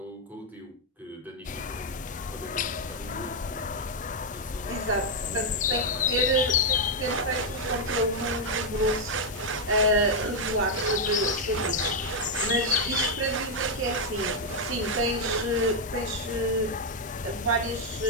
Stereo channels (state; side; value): normal; both; correlation 0.00